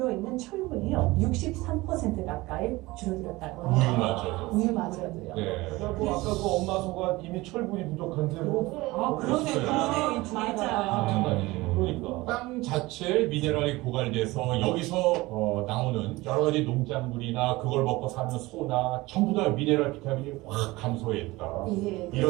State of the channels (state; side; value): quieter; left; 20.6 dB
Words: 철분이요, 63% 가까이 줄어들었다고 해요. 맞아요. 우유마저도요. 네. 그래갖고 아까 그 엄마 소가 이미 철분이 부족한데 뭐. 그러네요. 이 맞아요. 그러니까. 땅 자체에 미네랄이 고갈돼서 여기서 나오는 여러 가지 농작물이나 그걸 먹고 사는 소나 전부 다 미네랄 비타민이 확 감소했다. 예.